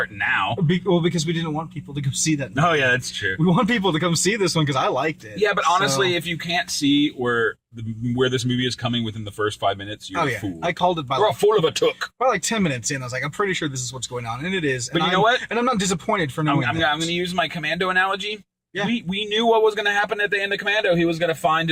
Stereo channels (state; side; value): identical; both; correlation 1.00